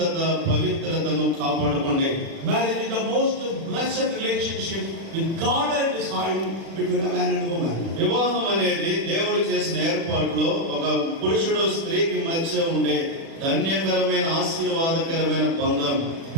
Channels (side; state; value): left; late; 36 ms